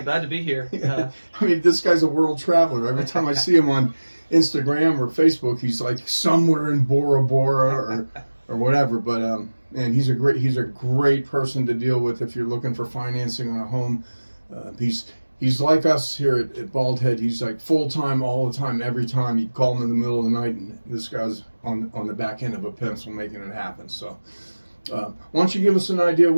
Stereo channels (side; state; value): both; inverted; correlation -1.00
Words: glad to be here. I mean, this guy's a world traveler. Every time I see him on Instagram or Facebook, he's like somewhere in Bora Bora or whatever. But and he's a great person to deal with if you're looking for financing on a home. He's like us here at Bald Head. He's like full time, all the time, every time. You call him in the middle of the night, and this guy's on the back end of a pencil making it happen. So, why don't you give us an idea of